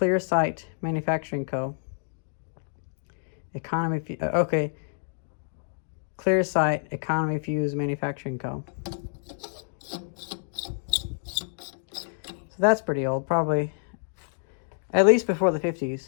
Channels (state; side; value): silent; right; digital silence